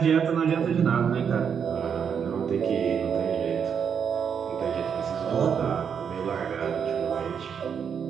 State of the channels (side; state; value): left; quieter; 7.3 dB